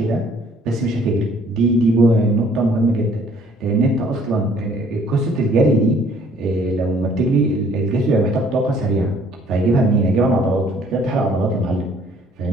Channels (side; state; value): both; normal; correlation 0.59